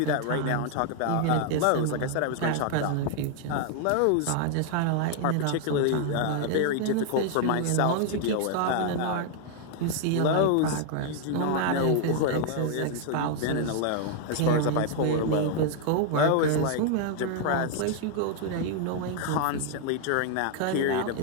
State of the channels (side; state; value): both; different; correlation 0.00